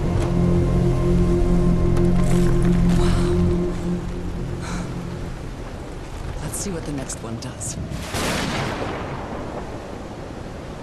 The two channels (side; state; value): both; identical; correlation 1.00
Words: Let's see what the next one does.